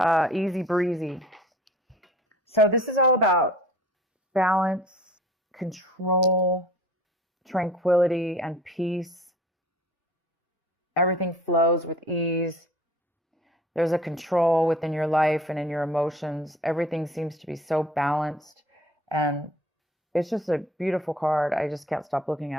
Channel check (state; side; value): normal; both; correlation 0.47